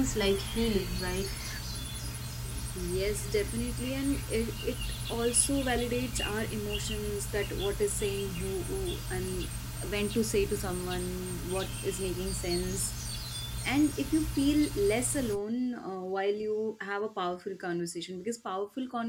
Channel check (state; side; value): identical; both; correlation 1.00